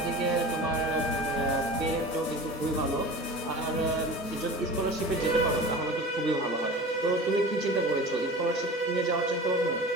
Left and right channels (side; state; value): both; normal; correlation 0.35